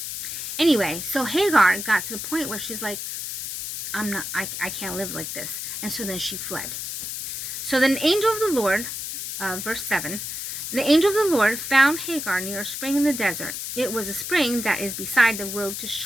Anyway, so Hagar got to the point where she's like, I can't live like this. And so then she fled. So then the angel of the Lord, verse 7, the angel of the Lord found Hagar near a spring in the desert. It was a spring that is beside the road to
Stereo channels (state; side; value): noise; left; hiss, 5 dB below the sound